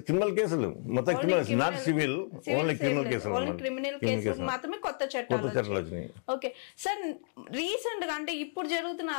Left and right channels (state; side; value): silent; right; 57 dB below the other